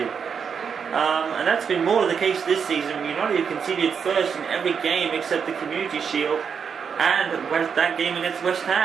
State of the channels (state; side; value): quieter; left; 6.6 dB